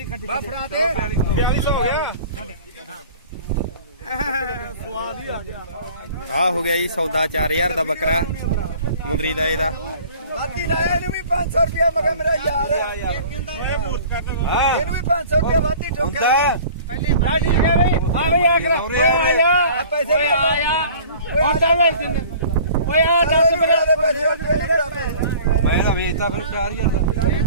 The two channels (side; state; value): both; inverted; correlation -0.46